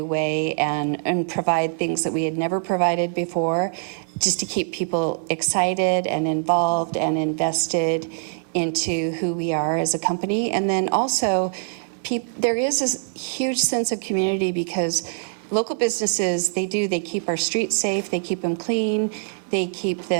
way, and provide things that we had never provided before, just to keep people excited and involved and invested into who we are as a company. And then also, there is this huge sense of community, because local businesses, they keep our streets safe, they keep them clean, they keep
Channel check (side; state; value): left; silent; 63 dB below the other